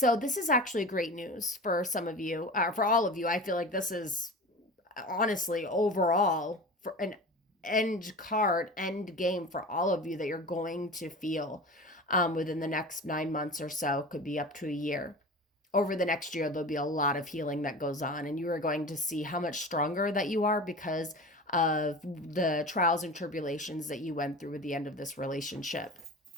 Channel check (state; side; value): normal; both; correlation 0.34